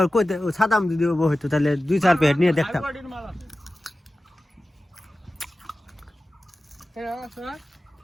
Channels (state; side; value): normal; both; correlation 0.95